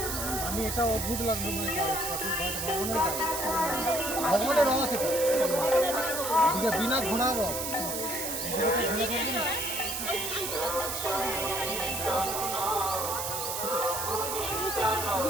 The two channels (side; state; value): right; noise; hiss, 3 dB below the sound